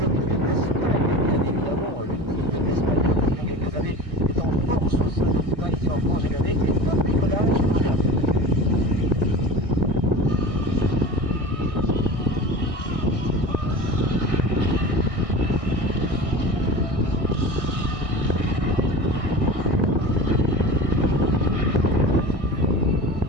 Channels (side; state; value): left; late; 1.6 ms